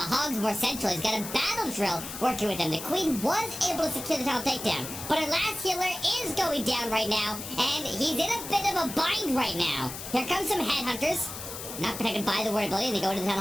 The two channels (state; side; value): noise; left; hiss, 9 dB below the sound